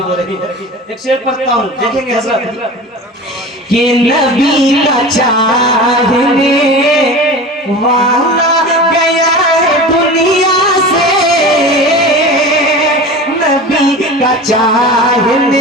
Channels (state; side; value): normal; both; correlation 0.33